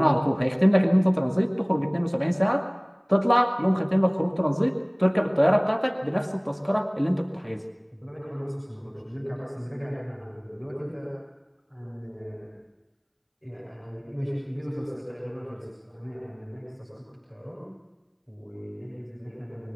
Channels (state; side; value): identical; both; correlation 1.00